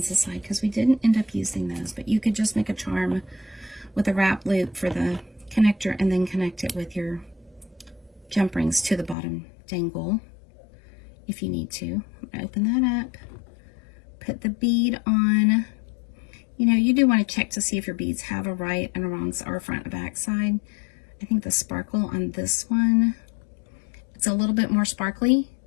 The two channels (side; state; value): right; drops out; at 9.2 s